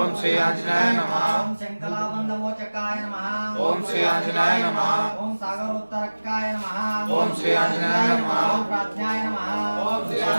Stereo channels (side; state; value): both; inverted; correlation -1.00